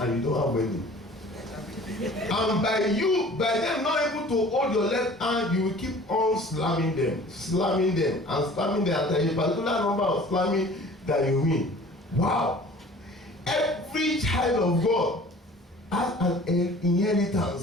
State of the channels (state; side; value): normal; both; correlation 0.47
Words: you don't have any. And by them not able to hold your left hand, you will keep on slamming them, and slamming them. And there is a particular number of slamming that you win. Wow. Every child of God has an